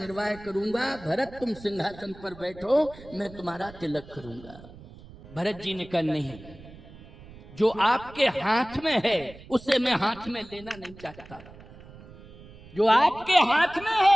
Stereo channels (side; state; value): right; noise; rumble, 19 dB below the sound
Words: करूंगा। भरत तुम सिंहासन पर बैठो, मैं तुम्हारा तिलक करूंगा। भरत जी ने कहा नहीं, जो आपके हाथ में है उसे मैं हाथ में लेना नहीं चाहता। जो आपके हाथ में